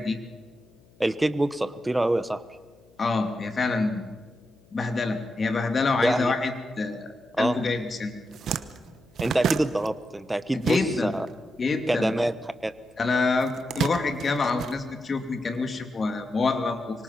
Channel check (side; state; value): left; noise; hum, 29 dB below the sound